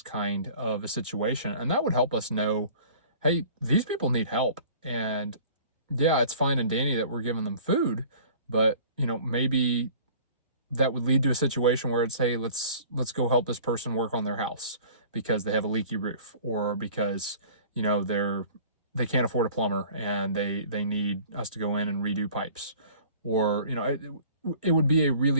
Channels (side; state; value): both; inverted; correlation -0.47